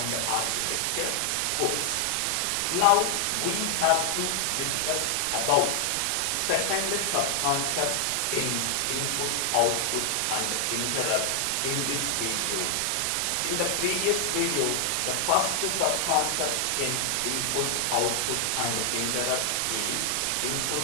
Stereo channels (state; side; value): different; both; correlation 0.00